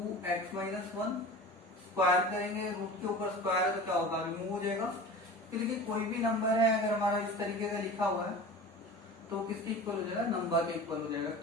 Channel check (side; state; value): both; normal; correlation 0.36